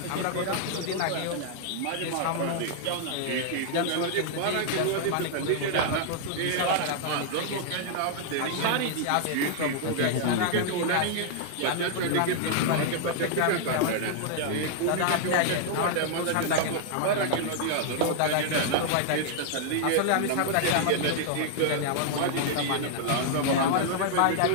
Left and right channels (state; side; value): different; both; correlation -0.01